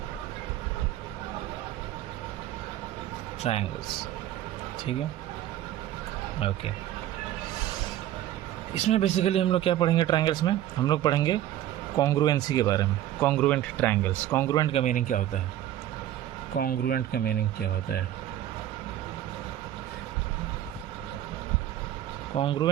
ट्रायंगल्स, ठीक है, ओके। इसमें बेसिकली हम लोग क्या पढ़ेंगे? ट्रायंगल्स में हम लोग पढ़ेंगे कॉन्ग्रुएंसी के बारे में। Congruent triangles. कॉन्ग्रुएंट का मीनिंग क्या होता है? कॉन्ग्रुएंट का मीनिंग क्या होता है?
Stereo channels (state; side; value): quieter; left; 12.8 dB